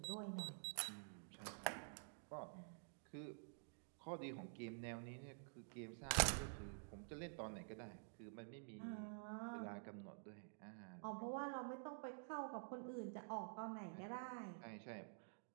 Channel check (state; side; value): silent; left; digital silence